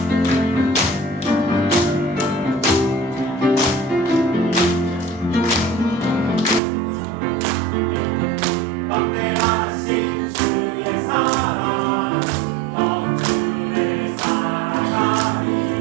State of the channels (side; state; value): left; drops out; at 6.6 s